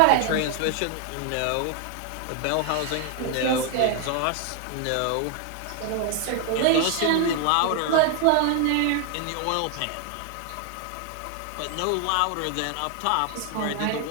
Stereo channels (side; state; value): both; different; correlation 0.00